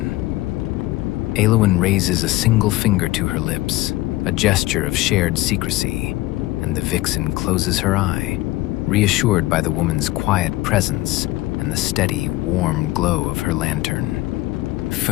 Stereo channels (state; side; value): quieter; right; 18.2 dB